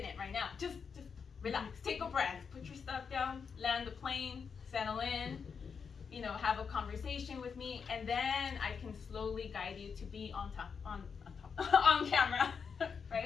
right now. Just relax. Take a breath. Put your stuff down. Land the plane. Settle in. You know, have a conversation with me, and then I can slowly guide you to be on camera,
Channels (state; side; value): quieter; right; 6.1 dB